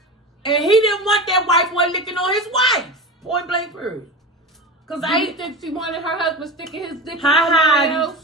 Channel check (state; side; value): normal; both; correlation 0.27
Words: And he didn't want that white boy licking on his wife. Point blank period. Cause Do I you think she wanted her husband sticking his dick in Hi, somebody Heidi.